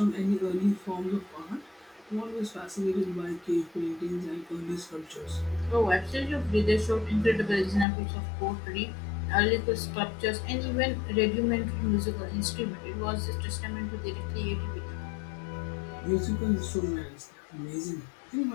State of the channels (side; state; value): right; drops out; at 7.9 s